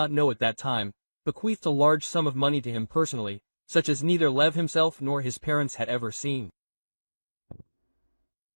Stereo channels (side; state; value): both; inverted; correlation -1.00